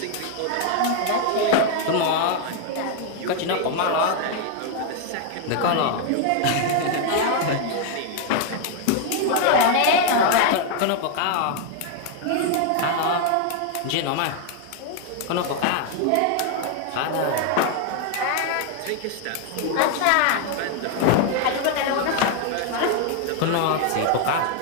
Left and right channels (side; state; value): both; different; correlation 0.00